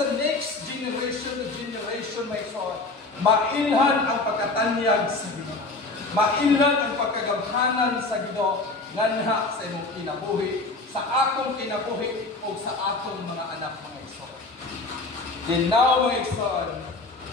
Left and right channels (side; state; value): right; quieter; 3.4 dB